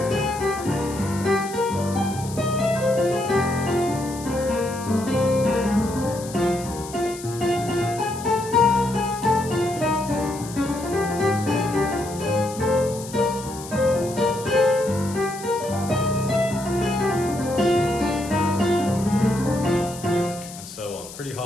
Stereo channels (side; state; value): left; noise; hiss, 14 dB below the sound